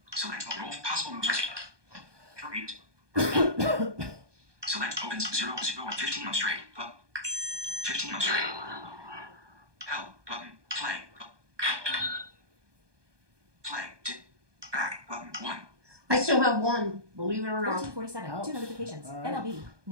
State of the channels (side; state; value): left; late; 1.2 ms